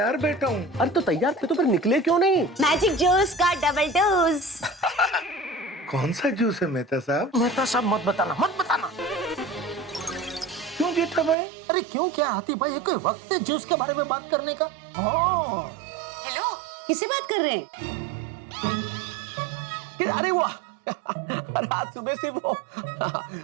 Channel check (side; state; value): left; drops out; at 11.4 s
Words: बैठा हूँ। अरे तो तैयार थे तो फिर निकले क्यों नहीं? मैजिक जूस का डबल डोज। कौन सा जूस है मेहता साहब? मेहता साहब मत बताना, मत बताना। क्यों जेठा भाई? अरे क्यों क्या हाथी भाई, ये कोई वक्त है जूस के बारे में बात करने का? हाँ हेलो, किससे बात कर रहे हैं? अरे वाह अरे आज सुबह से वो